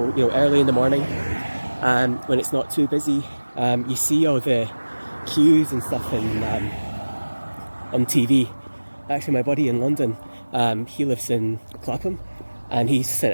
early in the morning, when it's not too busy, you see all the queues and stuff on TV. Actually, my buddy in London, he lives in Clapham, and he's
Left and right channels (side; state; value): both; inverted; correlation -1.00